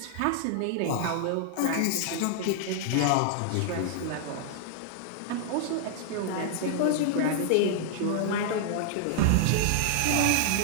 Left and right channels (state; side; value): different; both; correlation -0.01